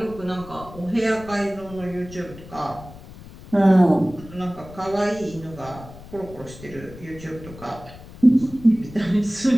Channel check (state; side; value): noise; left; rumble, 17 dB below the sound